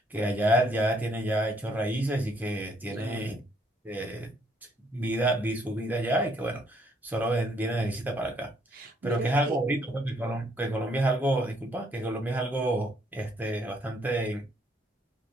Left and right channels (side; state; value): both; normal; correlation 0.68